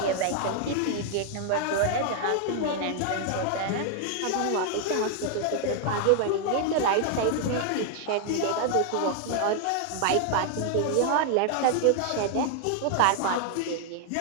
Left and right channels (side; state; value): both; different; correlation 0.00